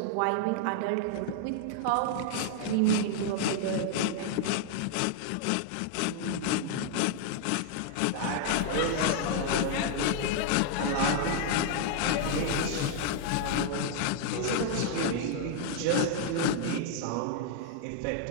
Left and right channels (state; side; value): different; both; correlation 0.00